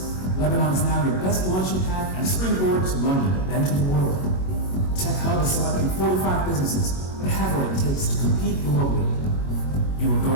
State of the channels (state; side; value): late; right; 22 ms